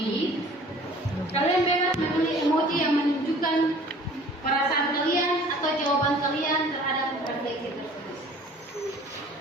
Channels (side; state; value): both; normal; correlation 0.50